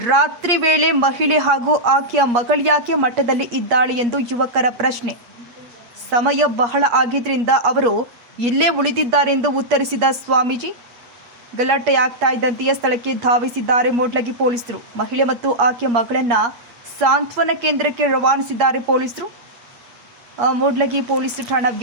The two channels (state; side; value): late; left; 8.5 ms